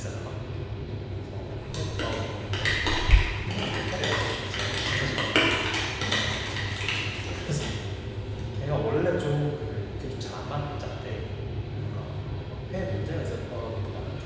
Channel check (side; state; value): both; identical; correlation 1.00